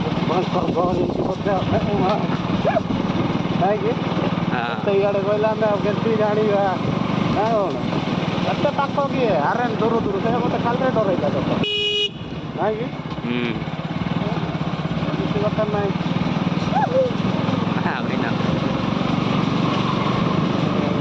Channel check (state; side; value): identical; both; correlation 1.00